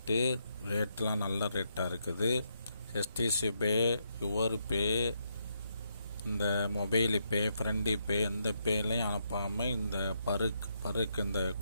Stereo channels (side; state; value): both; inverted; correlation -0.78